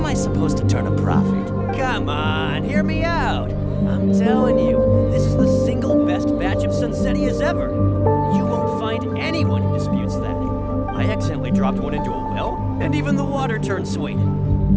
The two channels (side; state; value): both; identical; correlation 1.00